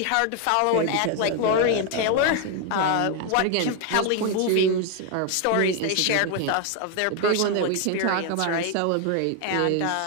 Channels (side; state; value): both; different; correlation 0.00